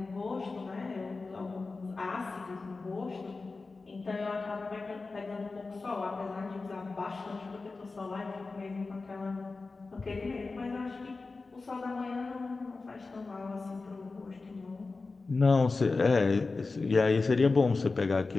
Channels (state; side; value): quieter; right; 3.9 dB